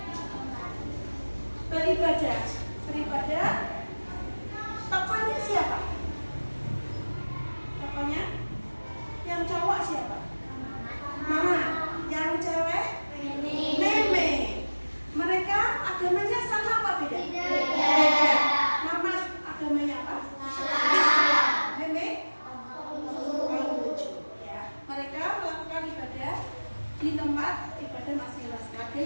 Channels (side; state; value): both; inverted; correlation -1.00